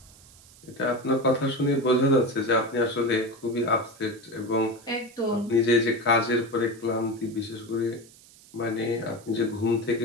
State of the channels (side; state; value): right; noise; hiss, 24 dB below the sound